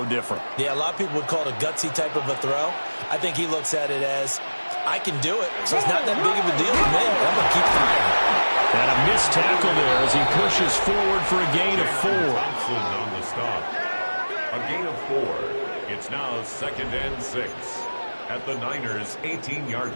different. Yeah, a lot of people would call it a gutsy type of a throw. I think he looks at it as I can do it, so it's not that big of a deal to me. I'm going to keep firing. And a missed tackle there as he pushes forward for a gain of 4. Thompson on the stop. A gain of 4. It's now 2nd and 6 at the Niners' 18-yard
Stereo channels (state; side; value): inverted; both; correlation -1.00